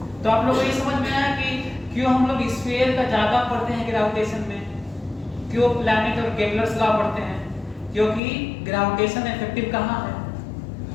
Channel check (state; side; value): drops out; right; at 8.2 s